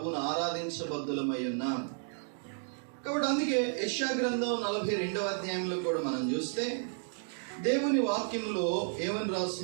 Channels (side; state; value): left; silent; 56 dB below the other